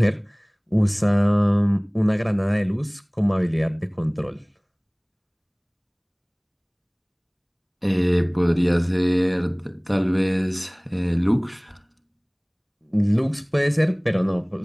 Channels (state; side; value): identical; both; correlation 1.00